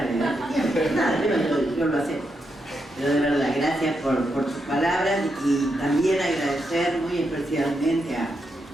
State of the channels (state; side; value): normal; both; correlation 0.83